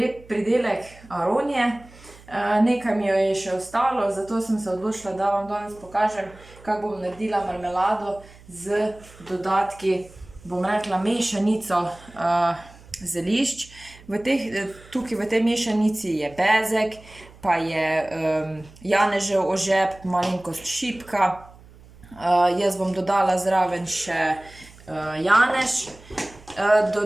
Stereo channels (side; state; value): right; noise; hum, 23 dB below the sound